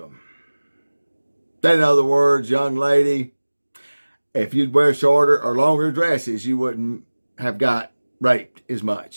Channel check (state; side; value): inverted; both; correlation -1.00